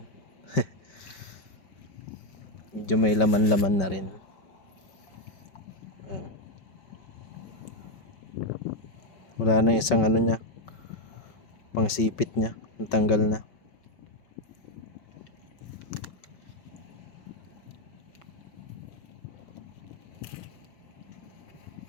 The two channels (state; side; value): late; right; 5.3 ms